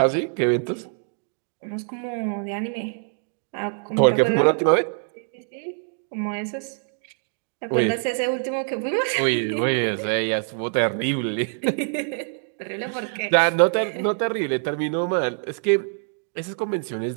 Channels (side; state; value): left; silent; 62 dB below the other